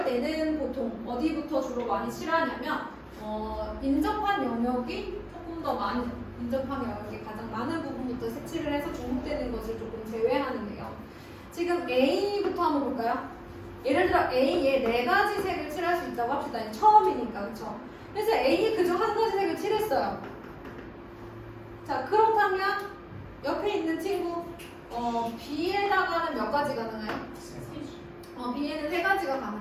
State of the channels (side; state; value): both; identical; correlation 1.00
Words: 때는 보통 어디부터 주로 많이 칠하냐면 인접한 영역이 조금 더 많이 인접한 영역이 가장 많은 부분부터 색칠을 해서 중복되는 것을 조금 제외하는데요. 지금 A부터 한번 볼까요? 예를 들어 A에 4가지 색을 칠할 수 있다고 합시다. 처음이니까, 그렇죠? 그래서 A에 그중 한 가지 색을 칠했어요. 자, 그렇다면 옆에 있는 친구 B에다가는 몇 가지 가능해요? B에는 3가지가